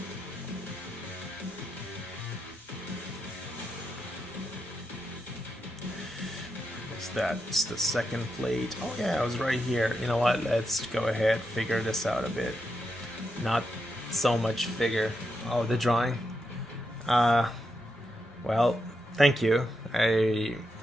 That's the second plate. Oh yeah, I was right here. You know what? Let's go ahead, figure this out a bit. Not so much figure. Oh, the drawing. Well, thank you. I'm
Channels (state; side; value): normal; both; correlation 0.85